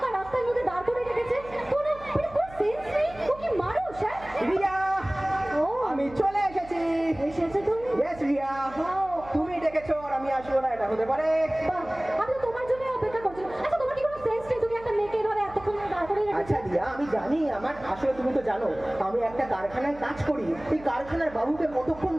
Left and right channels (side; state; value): right; noise; hum, 19 dB below the sound